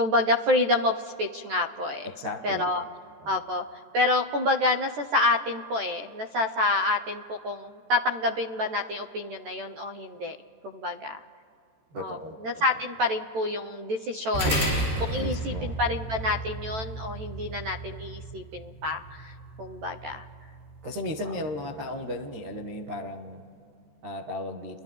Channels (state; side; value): late; left; 14 ms